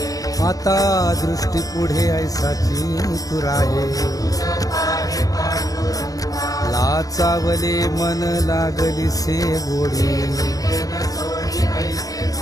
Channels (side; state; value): right; late; 0.17 ms